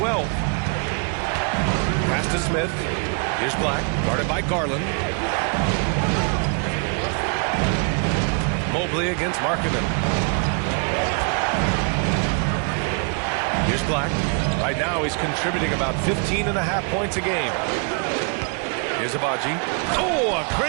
Pass to Smith. Here's Black, guarded by Garland. Mobley against Markkanen. Here's Black. Right now he's contributing about 15.5 points a game. Here's Abaji. Oh, a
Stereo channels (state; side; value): quieter; left; 38.7 dB